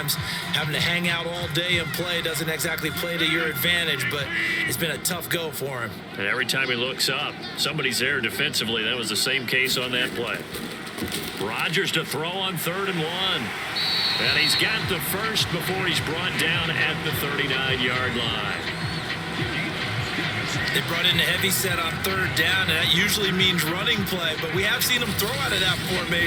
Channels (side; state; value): both; identical; correlation 1.00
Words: having to hang out all day and play doesn't exactly play to your advantage, but it's been a tough go for him. And every time he looks up, somebody's there defensively. That was the same case on that play. Rodgers to throw on 3rd and 1. And he's got the first before he's brought down at the 39-yard line. They brought in a heavy set on 3rd down, and that usually means running play, but we have seen them throw out of that